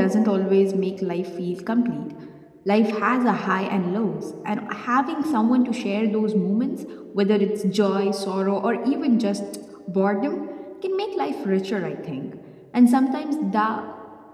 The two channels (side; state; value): both; identical; correlation 1.00